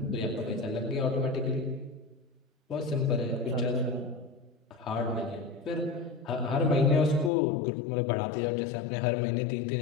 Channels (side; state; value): right; drops out; at 7.3 s